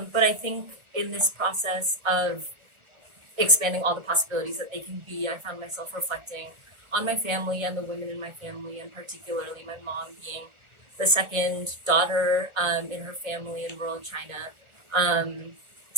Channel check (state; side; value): late; left; 1.3 ms